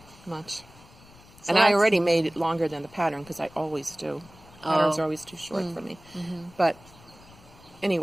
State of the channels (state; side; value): noise; left; rumble, 24 dB below the sound